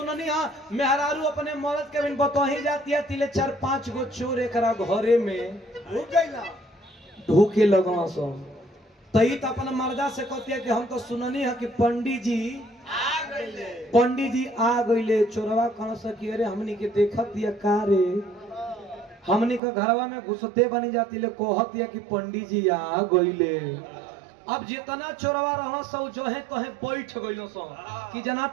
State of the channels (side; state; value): left; drops out; at 19.6 s